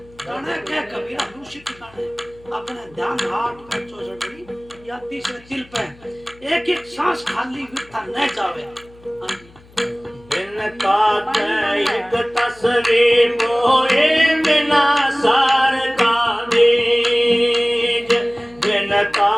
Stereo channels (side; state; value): left; noise; hum, 26 dB below the sound